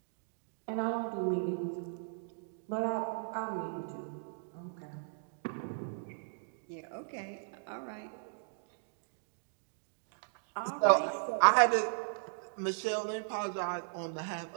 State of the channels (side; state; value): left; silent; digital silence